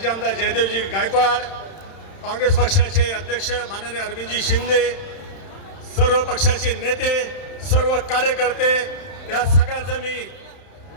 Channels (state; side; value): late; right; 31 ms